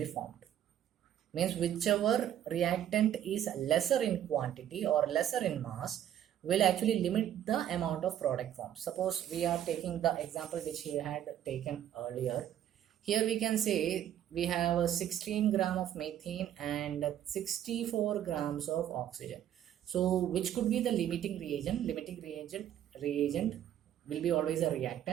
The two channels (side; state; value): left; quieter; 10.9 dB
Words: formed. Means whichever reactant is lesser in quantity or lesser in mass will actually limit the amount of product formed. Suppose we are taking the example which he had taken earlier. Here we can say we have 16 gram of methane and 64 grams of oxygen. So which could be the limiting reagent? Limiting reagent will be always a